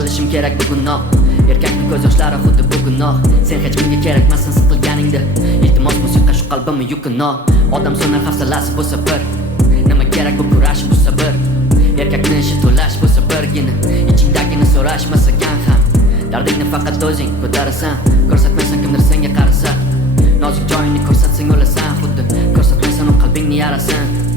kerak bugunoq, erkakning ko'z yoshlari xuddi bu gunoh. Sen hech kimga kerakmassan siqilganingda, iltimos musiqa shu qalbimni yukinoq. Odam so'nar hafsalasi bo'lsa bir, nima kerak bu kurash bu sabr. Erkakni ishi to'lash bo'lsa birgina, ichingdagini so'rashmasakan ham. Dardingni faqat o'zing ko'tarasan, ko'rsatmaysan kimdir senga qarasa. Nozik joyingni ko'rsatsang o'lasan, xuddi ko'rsatmaysan u qalbingni yarasan.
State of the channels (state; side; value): normal; both; correlation 0.45